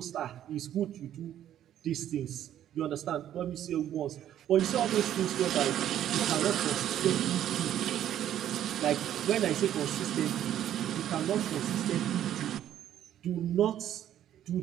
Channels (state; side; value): quieter; left; 11.2 dB